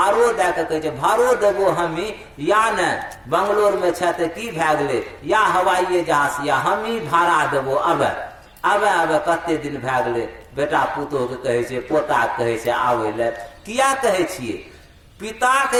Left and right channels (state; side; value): identical; both; correlation 1.00